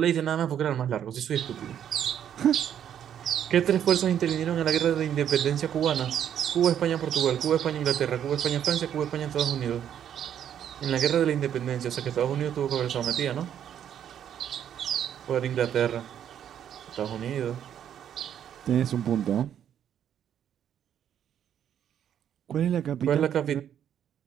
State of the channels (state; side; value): quieter; left; 9.6 dB